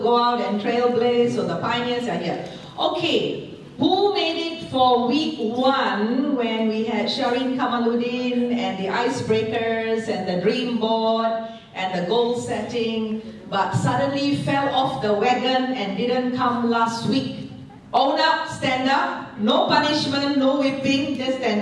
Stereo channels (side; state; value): both; identical; correlation 1.00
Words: out and trailblaze, so the pioneers are here. Okay, who made it for week 1 when we had Shireen Kamaluddin and the icebreakers and the dream board and the goal setting, but suddenly fell off the wagon and didn't come last week? Own up, stand up, no punishment, no whipping, just stand